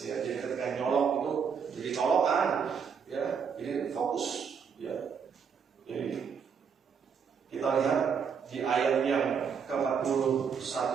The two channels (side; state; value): left; quieter; 6.6 dB